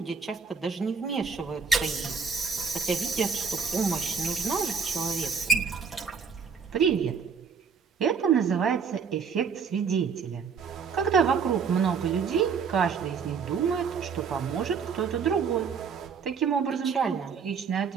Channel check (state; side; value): quieter; left; 6.0 dB